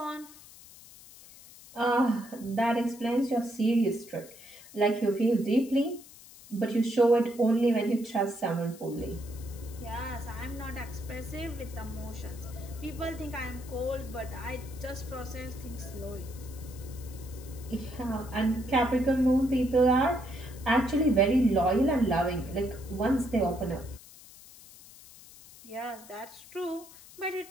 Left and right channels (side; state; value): left; noise; hiss, 20 dB below the sound